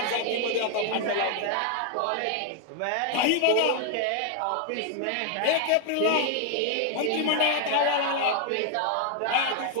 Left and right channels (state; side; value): different; both; correlation 0.00